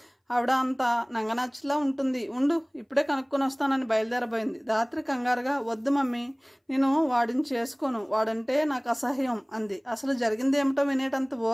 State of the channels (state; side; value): identical; both; correlation 1.00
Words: ఆవిడ అంత నంగనాచిలా ఉంటుంది, ఉండు ఇప్పుడే కనుక్కొని వస్తానని బయలుదేరబోయింది. రాత్రి కంగారుగా, వద్దు మమ్మీ, నేను వాడిని చేసుకోను, వాడంటే నాకు అసహ్యం అంది. అసలు జరిగింది ఏమిటో వినేటంత